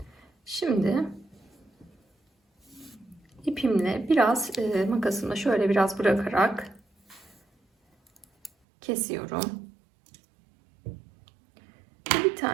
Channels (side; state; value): left; drops out; at 8.5 s